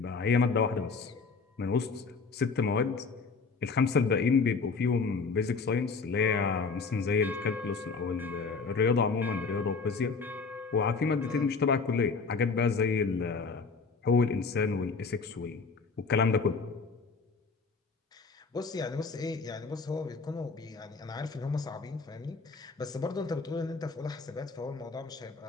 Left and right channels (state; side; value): quieter; right; 4.7 dB